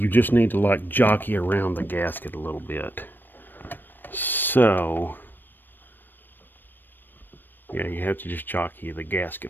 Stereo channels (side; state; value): right; late; 0.093 ms